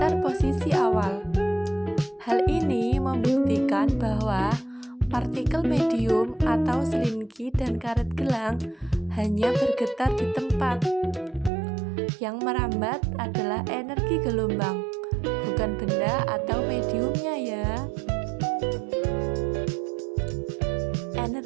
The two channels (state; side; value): drops out; left; at 11.5 s